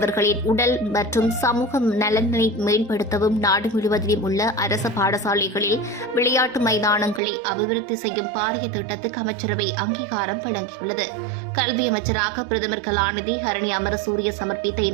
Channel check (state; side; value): drops out; left; at 7.2 s